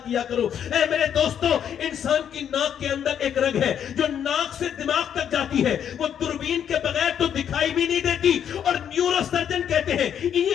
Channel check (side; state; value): right; quieter; 8.9 dB